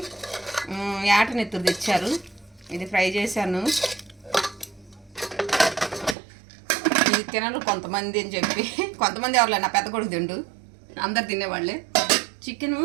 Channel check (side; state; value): left; drops out; at 6.2 s